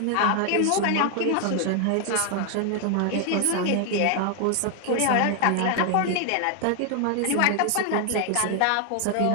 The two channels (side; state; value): both; different; correlation 0.00